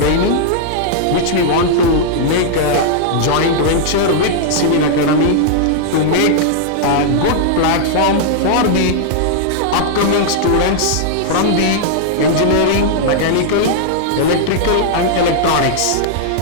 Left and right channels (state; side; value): different; both; correlation -0.01